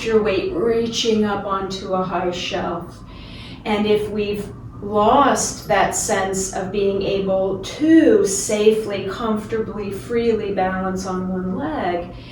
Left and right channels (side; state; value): both; identical; correlation 1.00